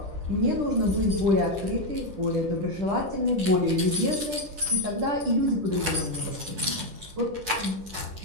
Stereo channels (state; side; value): late; left; 9.7 ms